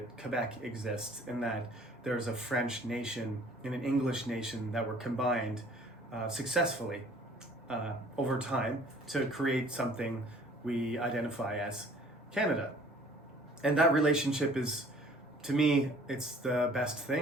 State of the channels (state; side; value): normal; both; correlation 0.54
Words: Quebec exists, and that there's a French nation and an English nation that were combined successfully over time to create something we identify as Canada. And that relationship is, to me, it's the best